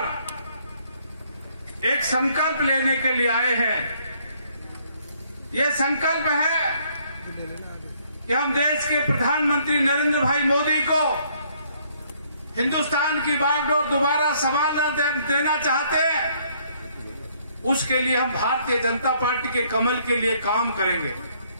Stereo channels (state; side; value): inverted; both; correlation -0.66